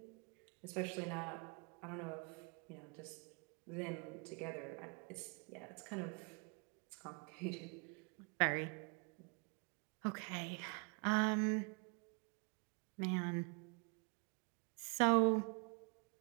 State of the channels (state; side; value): quieter; left; 35.6 dB